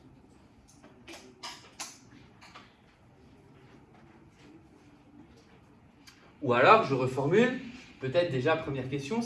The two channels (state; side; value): identical; both; correlation 1.00